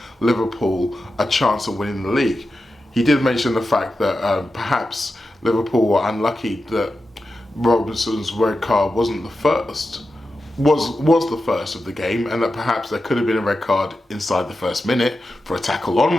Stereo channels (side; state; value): both; normal; correlation 0.91